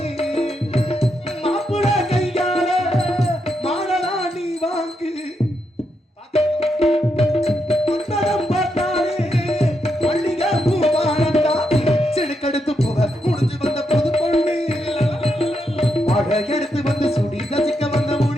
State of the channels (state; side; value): normal; both; correlation 0.82